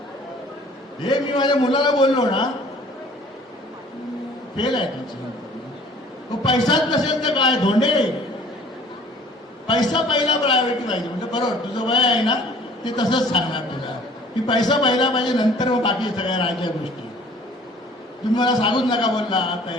हे मी माझ्या मुलाला बोललो ना, फेल आहे तुमचं. तो पैसाच नसेल तर काय धोंडे, पैसा पहिला प्रायोरिटी पाहिजे. म्हणजे बरोबर तुझं वय आहे ना ते तसंच सांगणार तुला की पैसा पहिला पाहिजे, नंतर मग बाकी सगळ्या राहायच्या गोष्टी. तुम्ही मला सांगूच नका बोलला आता,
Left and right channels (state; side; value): normal; both; correlation 0.52